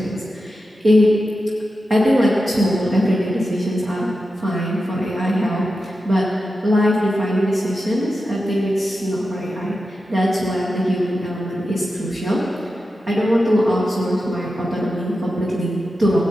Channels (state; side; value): normal; both; correlation 0.91